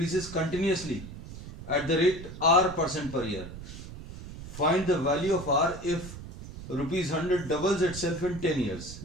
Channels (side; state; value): right; noise; rumble, 12 dB below the sound